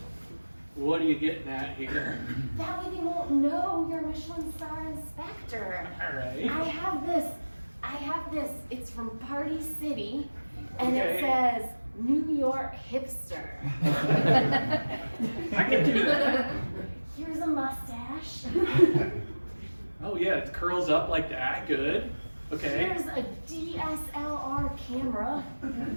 What are you getting at here? That way they won't know you're Michelin star inspector. All right. I have this. It's from Party City, and it Okay. says New York hipster. I can do that. Here's a mustache. Oh yeah, it curls up like that. Good. Okay. Here's a DSLR camera.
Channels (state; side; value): inverted; both; correlation -1.00